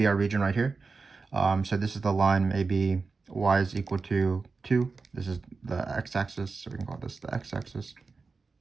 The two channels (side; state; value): left; quieter; 4.3 dB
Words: our region right here. So this is the line, maybe y is equal to 2. This is the x-axis, so we can call this the x-axis.